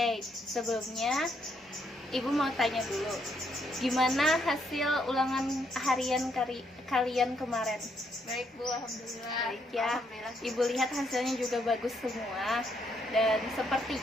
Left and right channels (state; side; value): normal; both; correlation 0.74